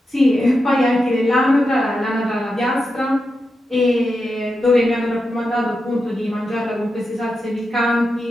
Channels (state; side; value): normal; both; correlation 0.88